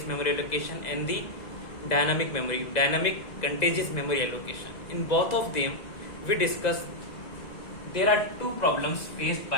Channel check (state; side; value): late; right; 2.0 ms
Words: memory allocation and the dynamic contagious memory allocation. In both of them we discuss there are two problems faced